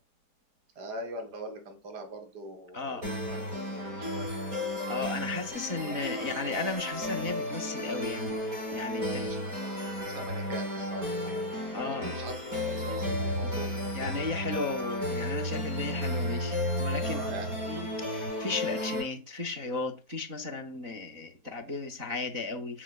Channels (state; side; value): late; left; 4.0 ms